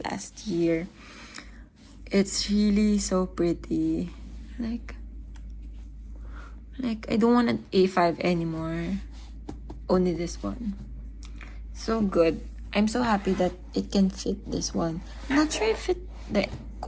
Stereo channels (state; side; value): identical; both; correlation 1.00